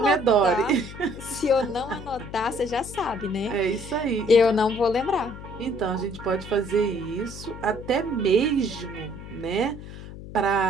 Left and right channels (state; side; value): noise; left; hum, 13 dB below the sound